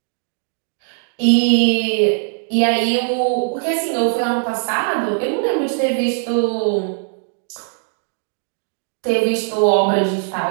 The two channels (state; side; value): silent; left; 66 dB below the other